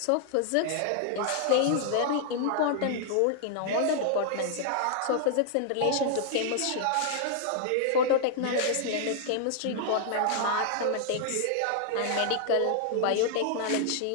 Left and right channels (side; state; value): both; different; correlation 0.00